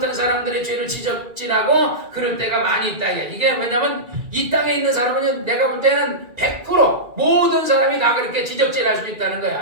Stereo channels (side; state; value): left; late; 2.3 ms